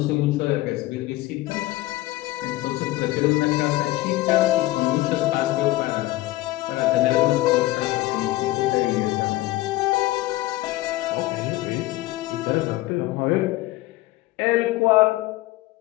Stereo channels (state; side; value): quieter; right; 17.9 dB